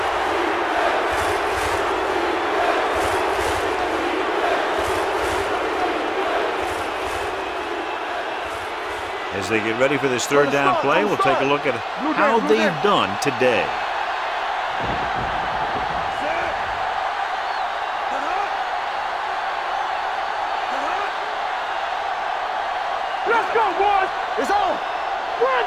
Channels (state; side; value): identical; both; correlation 1.00